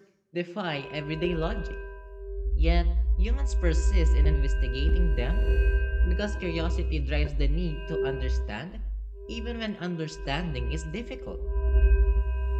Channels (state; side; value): identical; both; correlation 1.00